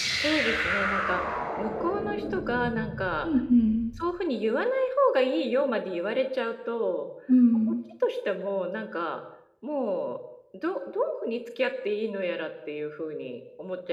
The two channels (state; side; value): identical; both; correlation 1.00